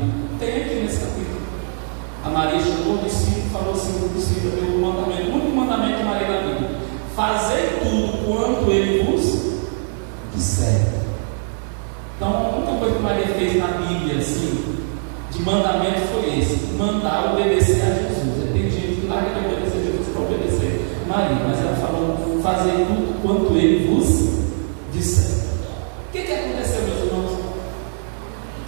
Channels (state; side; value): silent; left; digital silence